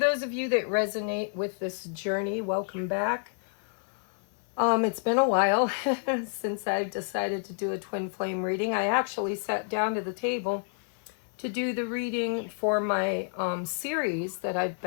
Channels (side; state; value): right; silent; 58 dB below the other